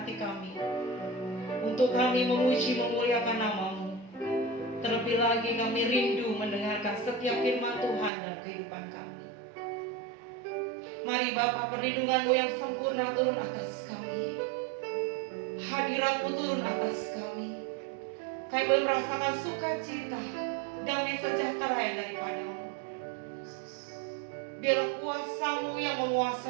hati kami untuk kami memuji memuliakan nama-Mu. Terlebih lagi kami rindu mendengarkan setiap firman Tuhan dalam kehidupan kami. Mari Bapa, perlindungan-Mu yang sempurna turun atas kami. Hadirat-Mu turun atas kami. Kami boleh merasakan sukacita, damai sejahtera yang daripada-Mu. Biarlah kuasa-Mu yang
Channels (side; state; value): left; drops out; at 8.1 s